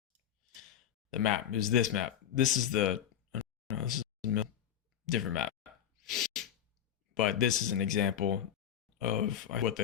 map. It was this map. This is this is a different map. But this is an example of what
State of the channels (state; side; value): quieter; right; 9.7 dB